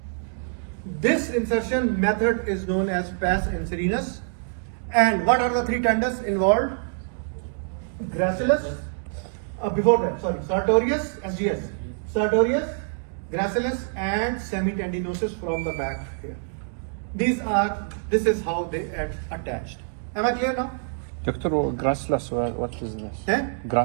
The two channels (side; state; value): left; silent; digital silence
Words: This insertion method is known as pes and serenus. And what are the three tendons involved? Gracilis, sartorius, SGS. Sartorius, gracilis and semitendinosus from the back here. This is how they are attached. Am I clear now? Doctor, gracilis, what is this? Eh?